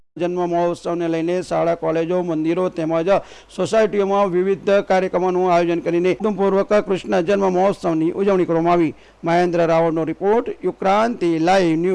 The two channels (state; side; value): identical; both; correlation 1.00